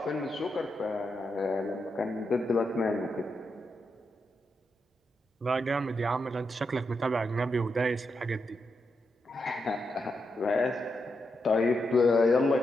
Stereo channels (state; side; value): normal; both; correlation 0.84